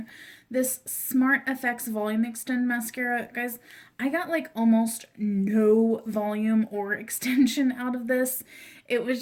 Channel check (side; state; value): both; identical; correlation 1.00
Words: this Smart FX Volume Extend Mascara. Guys, I got like almost no volume or extension out of this. It was